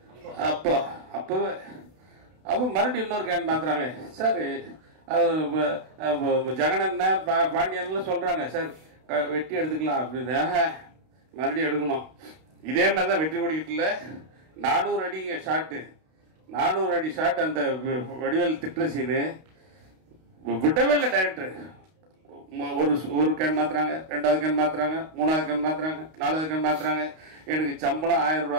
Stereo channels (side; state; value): left; late; 32 ms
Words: அப்போ மறுபடியும் இன்னொரு கேன் மாற்றுறாங்க. சார் ஜெகனண்ண பாண்டியன்லாம் சொல்கிறாங்க, சார் வெட்டி எடுத்துக்கலாம் அப்படின்னு. மறுபடியும் எடுக்கணும். இதே மாதிரி தான் வெற்றி கொடிக்கிட்டுல 400 அடி ஷாட்டு, 400 அடி ஷாட். அந்த வடிவேல் திட்டுற சீனு விடவே இல்லை டைரக்டர். ஒரு கேன் மாத்துறாங்க, 2வது கேன் மாத்துறாங்க, 3வது கேன் மாத்துறாங்க, 4வது கேன் மாத்துறாங்க. எனக்கு சம்பளம் 1000